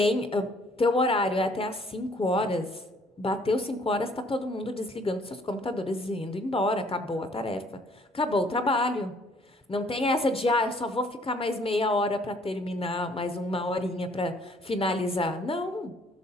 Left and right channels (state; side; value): normal; both; correlation 0.61